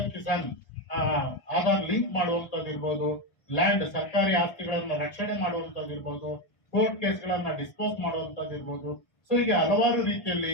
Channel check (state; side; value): late; right; 1.2 ms